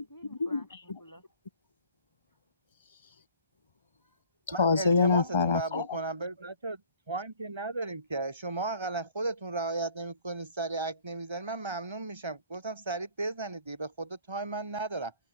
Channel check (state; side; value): inverted; both; correlation -0.54